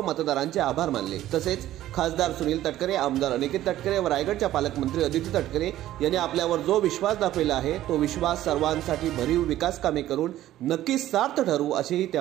मतदारांचे आभार मानले। तसेच खासदार सुनील तटकरे, आमदार अनिकेत तटकरे व रायगडच्या पालकमंत्री अदिती तटकरे यांनी आपल्यावर जो विश्वास दाखविला आहे तो विश्वास सर्वांसाठी भरीव विकास कामे करून नक्कीच सार्थ ठरू असेही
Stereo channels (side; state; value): left; quieter; 13.7 dB